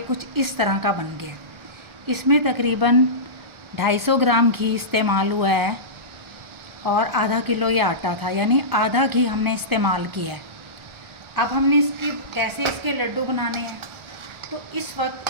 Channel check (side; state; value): left; late; 1.4 ms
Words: कुछ इस तरह का बन गया। इसमें तकरीबन 250 ग्राम घी इस्तेमाल हुआ है और आधा किलो ये आटा था, यानी आधा घी हमने इस्तेमाल किया है। अब हमने कैसे इसके लड्डू बनाने हैं, तो इस